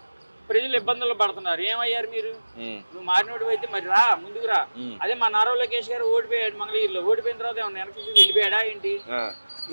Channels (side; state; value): both; inverted; correlation -1.00